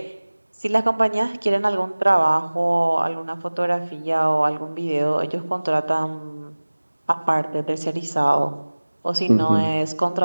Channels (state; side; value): inverted; both; correlation -1.00